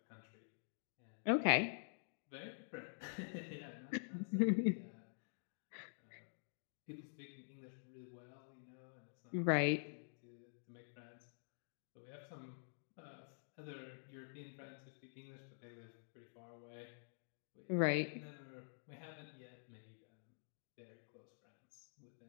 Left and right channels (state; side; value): silent; right; digital silence